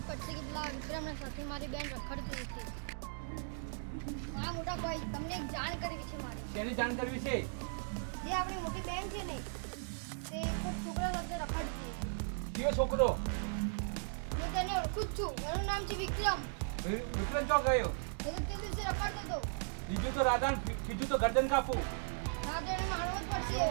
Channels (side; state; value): left; silent; digital silence